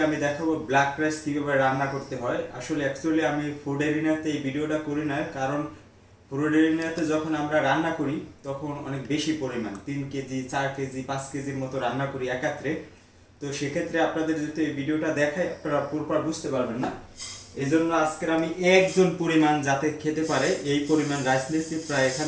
আমি দেখাবো ব্ল্যাক রাইস কীভাবে রান্না করতে হয়। আসলে অ্যাকচুয়ালি আমি ফুড এরিনাতে এই ভিডিওটা করি না, কারণ ফুড এরিনাতে যখন আমরা রান্না করি তখন অনেক বেশি পরিমাণ 3 কেজি 4 কেজি 5 কেজির মতো রান্না করি একাত্রে। তো সেক্ষেত্রে আপনাদের যদি এই ভিডিওটা দেখায় আপনারা পুরোপুরি বুঝতে পারবেন না। এই জন্য আজকের আমি একজন পরিমাণ যাতে খেতে পারে এই পরিমাণ রাইস নিয়েছি। প্রায়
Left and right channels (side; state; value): both; identical; correlation 1.00